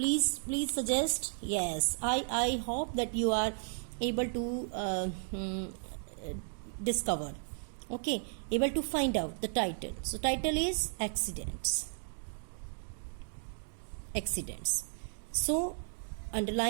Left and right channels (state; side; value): silent; left; digital silence